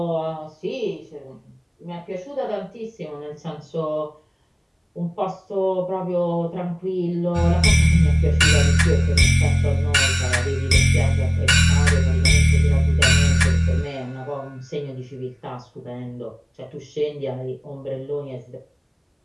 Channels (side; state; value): both; identical; correlation 1.00